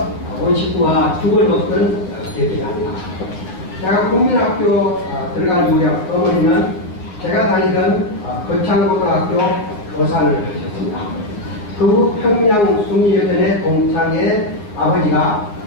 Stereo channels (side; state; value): right; late; 9.4 ms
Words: 온 식구와 죽을 먹던 기억이 납니다. 제가 국민학교 들어간 무렵 어머니는 제가 다니던 거창고등학교 교사를 하셨습니다. 그 후 평양 숭리여전의 동창의 아버지가